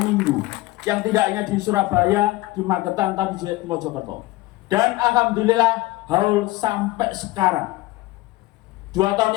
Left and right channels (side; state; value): right; quieter; 19.0 dB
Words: yang tidak hanya di Surabaya, di Magetan, tapi di Mojokerto. Dan alhamdulillah Haul sampai sekarang. 2 tahun